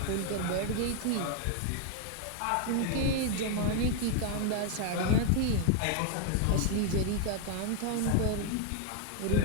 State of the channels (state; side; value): different; both; correlation 0.00